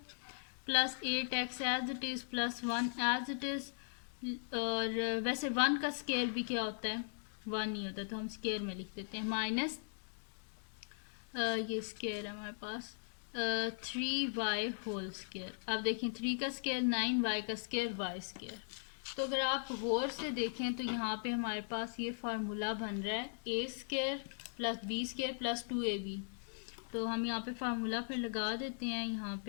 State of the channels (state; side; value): silent; right; digital silence